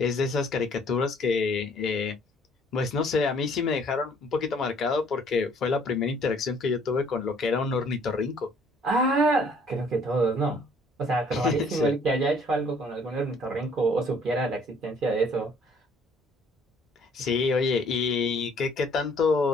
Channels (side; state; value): both; normal; correlation 0.60